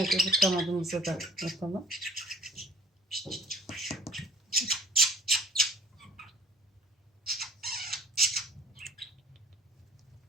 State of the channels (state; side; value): normal; both; correlation 0.53